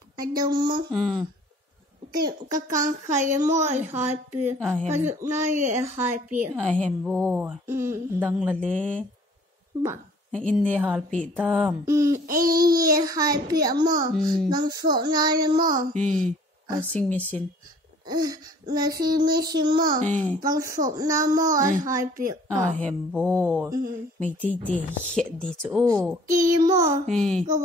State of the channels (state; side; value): normal; both; correlation 0.55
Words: Anh đăng mô. Cái con khai mô em hai pi. Cái dụng này em hai pi. Em bố. Anh đăng là lê. Bằng. In đi hal pi tam. Em hai pi mô. Bằng số này mô. Washing machine. Washing machine mô. Bằng số này mô em hai pi. Em bố. Mày tí hiện đi chỗ. Tí mô. Cái